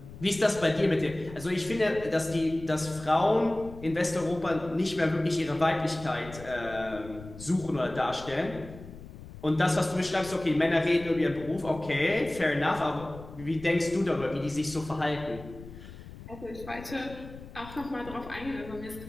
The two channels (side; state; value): left; noise; rumble, 15 dB below the sound